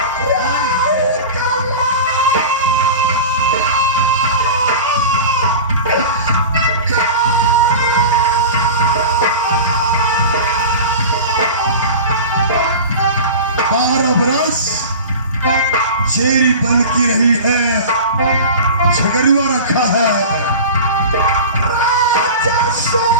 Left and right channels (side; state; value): both; inverted; correlation -0.33